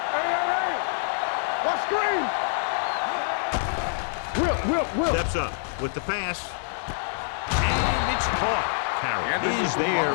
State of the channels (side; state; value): right; silent; digital silence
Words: Steps up with the pass. And it's caught. Carroll is